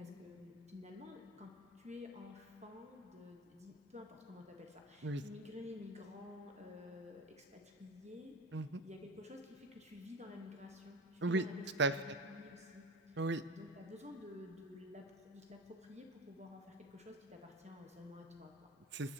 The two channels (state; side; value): normal; both; correlation 0.29